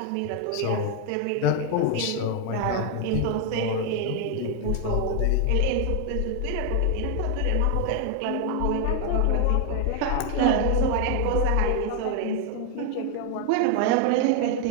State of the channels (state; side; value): different; both; correlation 0.01